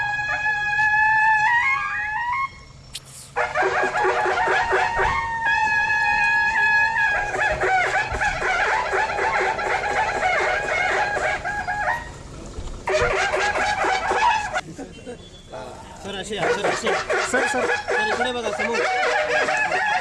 सर असे सर सर सर इकडे बघा समोर.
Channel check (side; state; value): both; identical; correlation 1.00